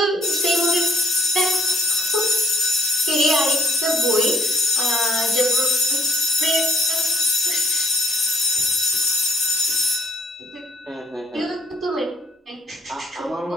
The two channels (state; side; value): normal; both; correlation 0.65